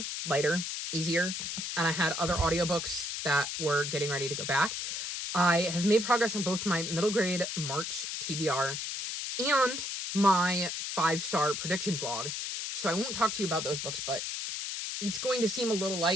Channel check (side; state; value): left; noise; hiss, 4 dB below the sound